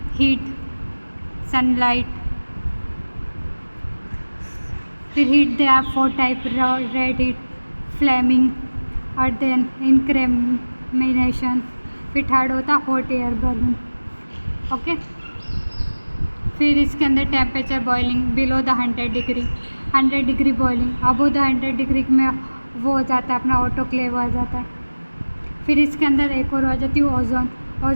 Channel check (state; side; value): inverted; both; correlation -1.00